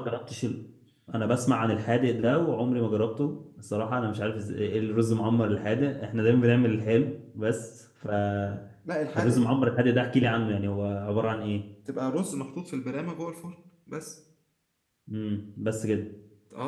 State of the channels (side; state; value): both; identical; correlation 1.00